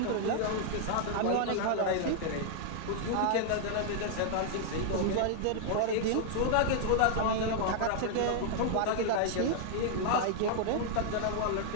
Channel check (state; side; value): different; both; correlation -0.01